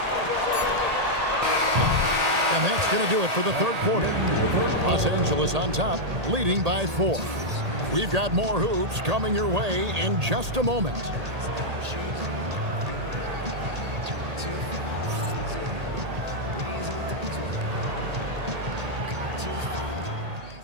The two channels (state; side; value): late; left; 1.8 ms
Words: And that's going to do it for the third quarter. Los Angeles on top, leading by 4. We've got more hoops coming your way in just a moment.